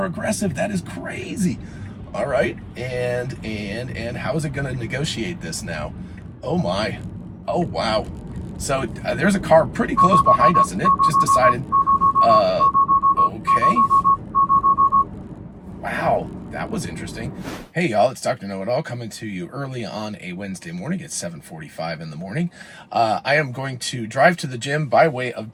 aggressive. That is crazy. All right, and how is it going to negotiate this now? Oh my. Oh wow. So there's a car pretty close behind us, and it just decided, okay. Wow, that was interesting. Hey y'all, it's Dr. Know-It-All coming to you early on a Wednesday morning. It's 7:45 in the morning. I am going to drive to the gym by way of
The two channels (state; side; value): identical; both; correlation 1.00